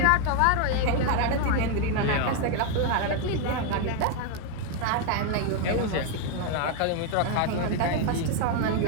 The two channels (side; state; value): both; different; correlation 0.01